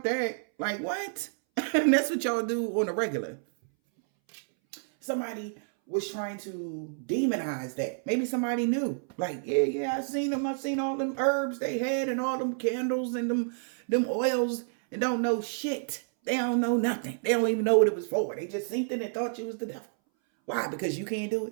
that. Like, what? And that's what y'all do on a regular. Somebody was trying to demonize that. Maybe somebody knew. Like, yeah, I seen them. I seen all them herbs they had and all them candles and them oils and don't know shit. They don't know nothing. They don't even know what it was for. They just seen it and thought you was the devil. Why? Because you can't do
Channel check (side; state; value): left; silent; 58 dB below the other